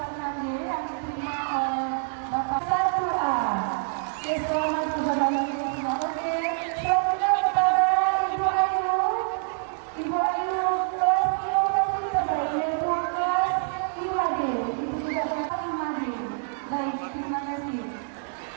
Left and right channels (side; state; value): left; silent; digital silence